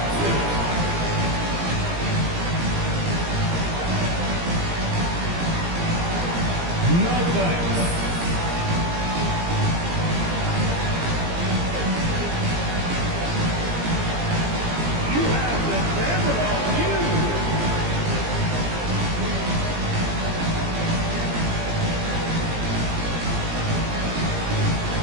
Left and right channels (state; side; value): late; left; 17 ms